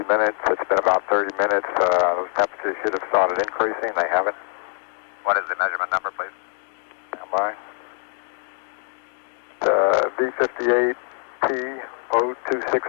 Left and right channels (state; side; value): silent; right; 56 dB below the other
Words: minutes. It's been about 30 minutes. Those temperatures should have started increasing. They haven't. What is the measurement number, please? Stand by.